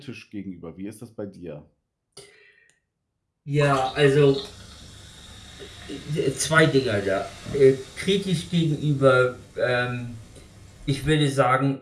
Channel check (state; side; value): identical; both; correlation 1.00